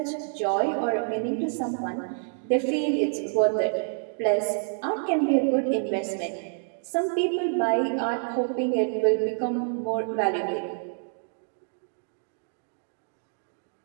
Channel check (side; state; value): left; silent; digital silence